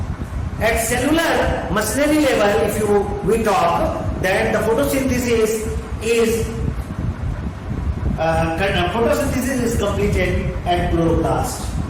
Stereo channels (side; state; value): both; identical; correlation 1.00